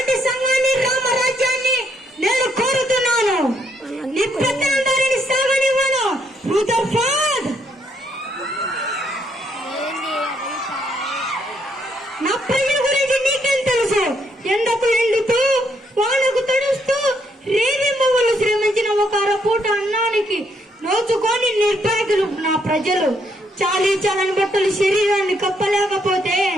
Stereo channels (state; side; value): normal; both; correlation 0.73